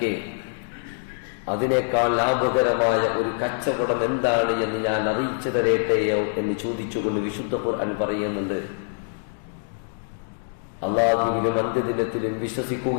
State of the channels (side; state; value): right; silent; digital silence